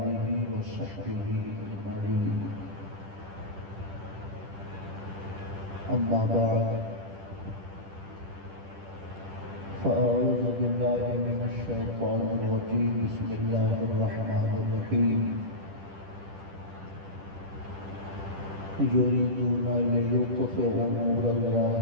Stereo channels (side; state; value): left; late; 10 ms